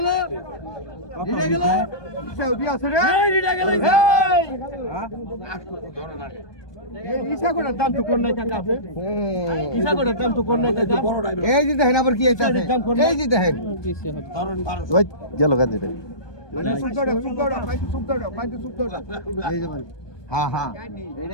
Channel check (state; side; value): late; right; 1.2 ms